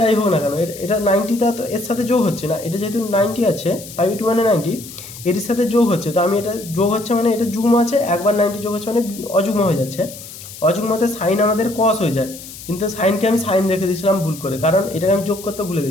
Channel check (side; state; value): left; noise; hiss, 14 dB below the sound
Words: হোক না কেন, এটা 90টা তো এর সাথে যোগ হচ্ছে না, এটা যেহেতু 90 আছে π/2 মানে 90, এর সাথে যোগ হচ্ছে, তো আমি এটা যোগ হচ্ছে মানে এটা যুগ্ম আছে, একবার 90 যোগ হচ্ছে মানে অযুগ্ম হয়ে যাচ্ছে। অযুগ্মতে সাইন আমাদের কস হয়ে যায়, কিন্তু সাইনকে আমি সাইন রেখে দিয়েছিলাম ভুল করে, কারণ এটাকে আমি যোগ করতে ভুলে